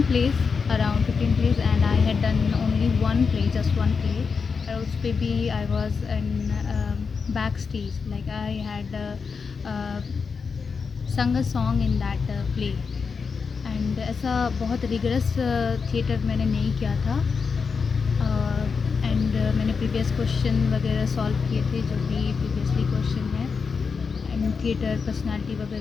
place, around 15 place, and I had done only one play, just one play. और उस पर भी I was in back stage, like I had sung a song in that play. And ऐसा बहुत rigorous theatre मैंने नहीं किया था। एंड मैंने प्रीवियस क्वेश्चन वगैरह सॉल्व किए थे, जो भी प्रीवियसली क्वेश्चन है, एंड थिएटर पर्सनालिटी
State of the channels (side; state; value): right; quieter; 5.4 dB